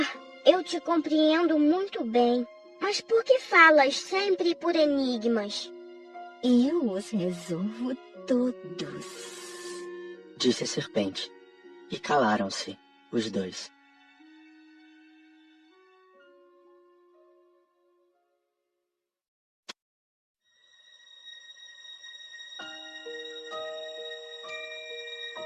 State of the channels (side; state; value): both; identical; correlation 1.00